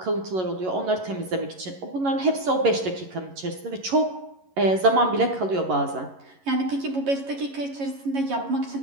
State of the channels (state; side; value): late; left; 11 ms